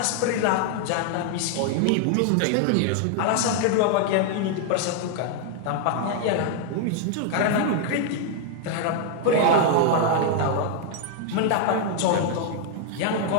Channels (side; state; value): both; different; correlation 0.00